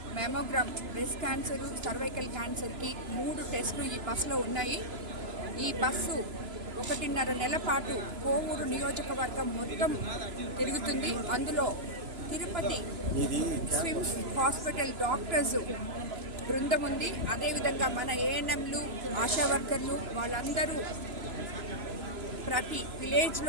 మెమోగ్రామ్, బ్రెస్ట్ క్యాన్సరు, సర్వైకల్ క్యాన్సర్కి 3 టెస్టులు ఈ బస్సులో ఉన్నాయి. ఈ బస్సు 1.5 నెలల పాటు కోవూరు నియోజకవర్గం మొత్తం తిరుగుతుంది. అందులో తిరుపతి స్విమ్స్ హాస్పిటల్ డాక్టర్స్ బృందం ఉంది. అదేవిధంగా మన ఏఎన్ఎంలు, ఆశా వర్కర్లు వాళ్ళందరూ ప్రతి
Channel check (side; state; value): left; late; 3.0 ms